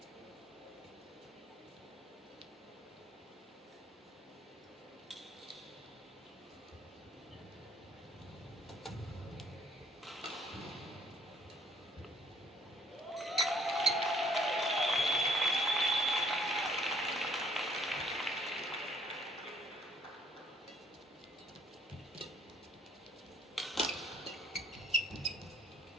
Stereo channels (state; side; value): normal; both; correlation 0.62